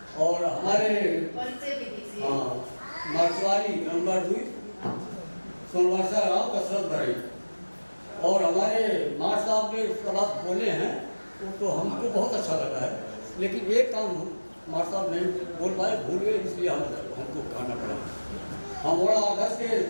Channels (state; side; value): inverted; both; correlation -1.00